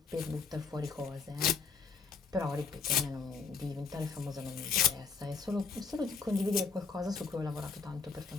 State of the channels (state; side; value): quieter; right; 5.2 dB